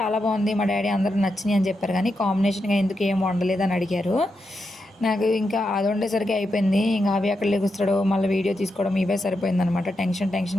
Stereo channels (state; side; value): normal; both; correlation 0.86